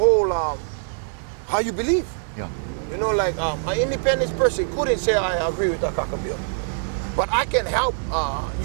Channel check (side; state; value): left; silent; digital silence